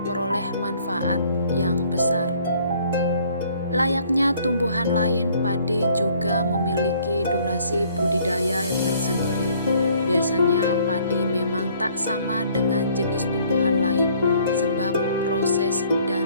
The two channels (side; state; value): both; inverted; correlation -0.60